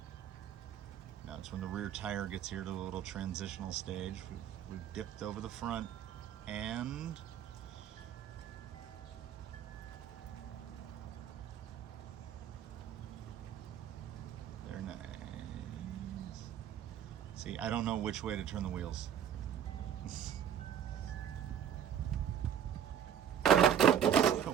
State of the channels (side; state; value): left; quieter; 9.2 dB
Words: Now it's when the rear tire gets here to a little transitional stage. We've dipped over the front and they're nice. See, I don't know which way to turn the wheels.